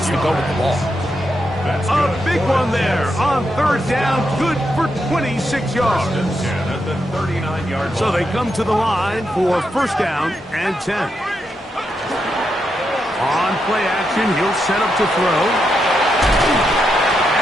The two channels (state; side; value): normal; both; correlation 0.83